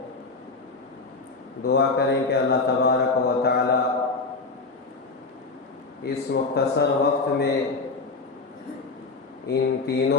دعا کریں کہ اللہ تبارک و تعالی اس مختصر وقت میں ان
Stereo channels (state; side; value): quieter; right; 3.9 dB